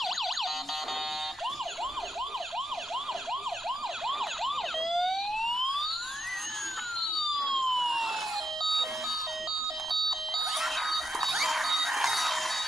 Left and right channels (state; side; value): normal; both; correlation 0.81